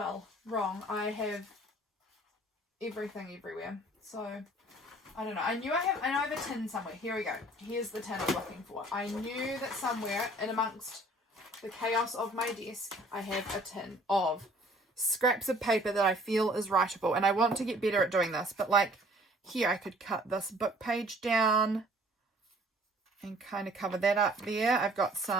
wrong. I have everything everywhere. So, I don't know. I know I have a tin somewhere. Here we go. Here's the tin I'm looking for. I knew that somewhere in amongst the chaos of my desk, I have a tin of scraps of paper that I feel is writable. And I want to get better at doing this. But like here, I could cut this book page down and kind of cover that up there. I've got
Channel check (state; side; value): normal; both; correlation 0.55